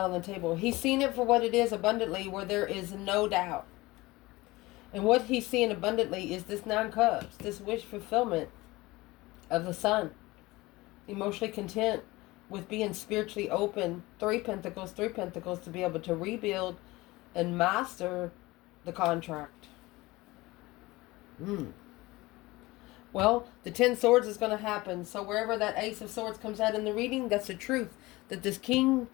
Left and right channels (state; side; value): quieter; right; 20.6 dB